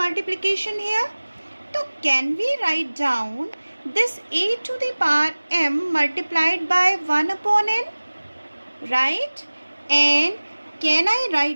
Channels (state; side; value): inverted; both; correlation -1.00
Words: here. So can we write down this a to the power m multiplied by 1 upon n? Right? And can I